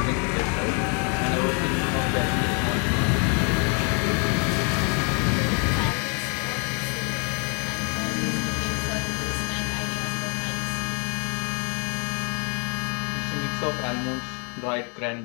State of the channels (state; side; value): quieter; right; 38.1 dB